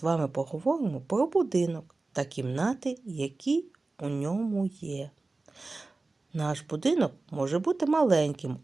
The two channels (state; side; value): quieter; left; 3.4 dB